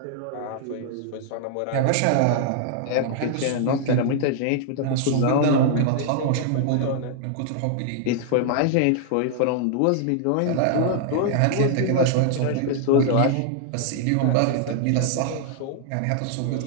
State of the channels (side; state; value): both; different; correlation -0.01